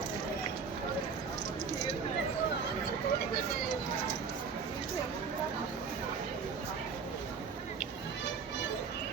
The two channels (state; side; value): quieter; left; 5.6 dB